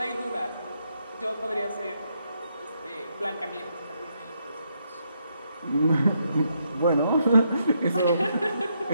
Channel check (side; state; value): both; inverted; correlation -0.77